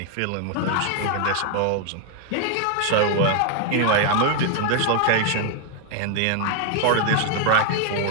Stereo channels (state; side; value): different; both; correlation 0.00